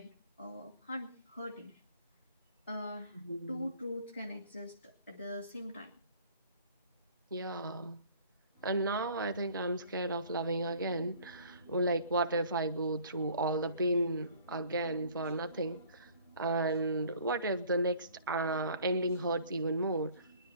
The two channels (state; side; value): inverted; both; correlation -0.53